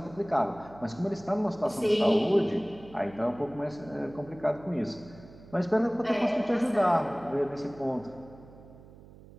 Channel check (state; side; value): noise; right; hum, 20 dB below the sound